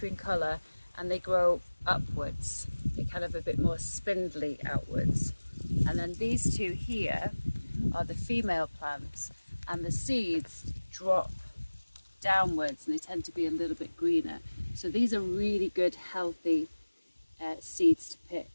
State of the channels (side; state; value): both; inverted; correlation -1.00